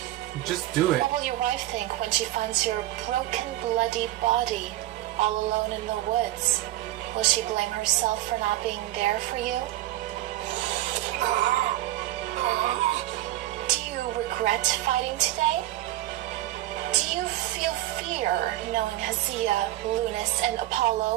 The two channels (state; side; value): quieter; left; 15.4 dB